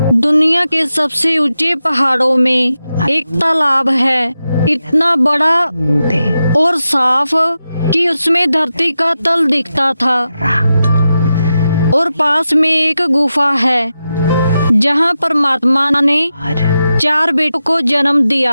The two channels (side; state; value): both; inverted; correlation -0.90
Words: दुनिया के सबसे ऊंचे पहाड़ों में एक तालाब है, इतना बड़ा और साफ कि उसमें धरती का तल दिखता था। और पास में एक गुफा है जहाँ परमात्मा ने 4 बेटों को जन्म